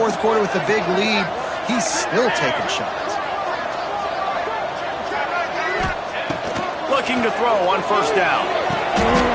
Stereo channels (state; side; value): identical; both; correlation 1.00